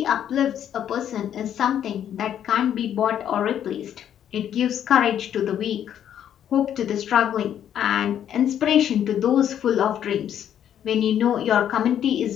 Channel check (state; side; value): quieter; right; 9.9 dB